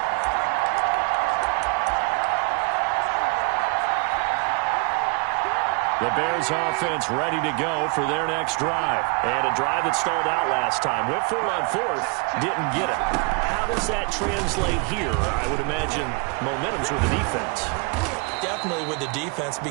The Bears offense ready to go for their next drive. And a drive that stalled out last time. Went for it on fourth, didn't get it. How does that translate here? I would imagine momentum's with the defense. Definitely with the defense,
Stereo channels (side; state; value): left; quieter; 32.3 dB